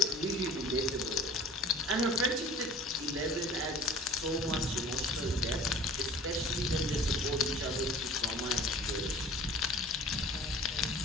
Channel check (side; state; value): both; normal; correlation 0.45